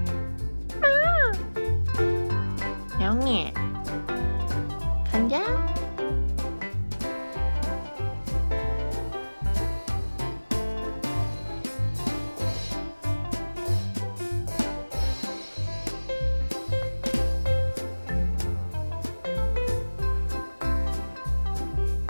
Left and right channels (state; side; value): inverted; both; correlation -1.00